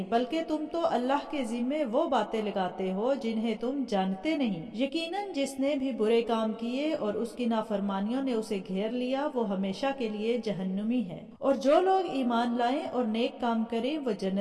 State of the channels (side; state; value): both; identical; correlation 1.00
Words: بلکہ تم تو اللہ کے ذمے وہ باتیں لگاتے ہو جنہیں تم جانتے نہیں۔ یقیناً جس نے بھی برے کام کیے اور اس کی نافرمانیوں نے اسے گھیر لیا وہ ہمیشہ کے لیے جہنمی ہے، اور جو لوگ ایمان لائیں اور نیک کام کریں وہ